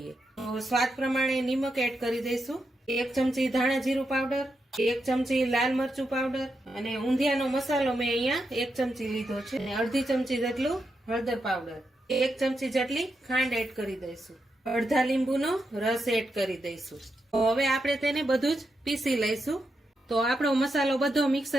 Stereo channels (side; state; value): both; normal; correlation 0.85